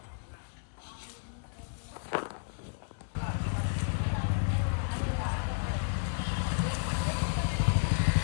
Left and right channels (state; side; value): silent; right; digital silence